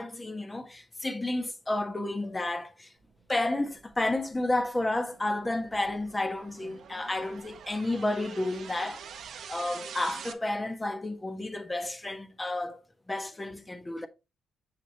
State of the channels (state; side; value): normal; both; correlation 0.96